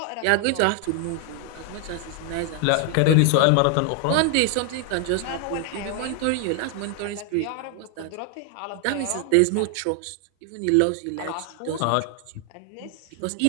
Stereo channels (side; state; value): both; different; correlation 0.00